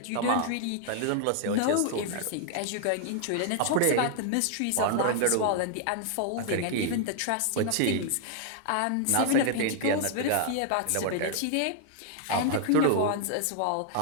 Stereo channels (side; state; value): both; different; correlation 0.00